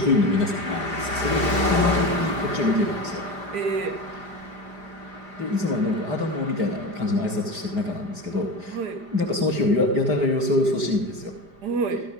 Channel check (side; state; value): left; late; 5.0 ms